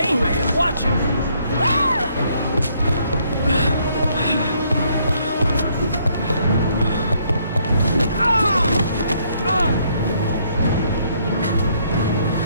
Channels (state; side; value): inverted; both; correlation -0.68